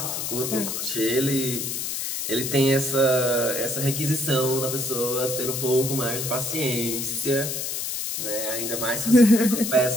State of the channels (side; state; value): left; noise; hiss, 3 dB below the sound